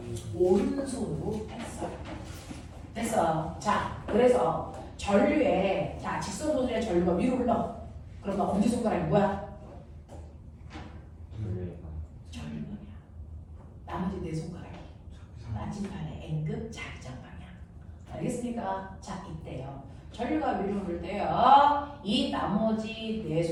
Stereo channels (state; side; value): identical; both; correlation 1.00